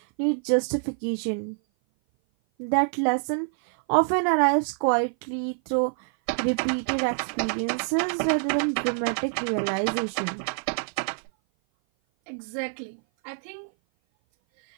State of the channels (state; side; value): silent; left; 57 dB below the other